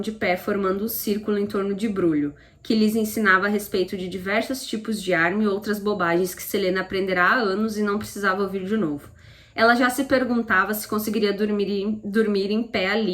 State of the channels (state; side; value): identical; both; correlation 1.00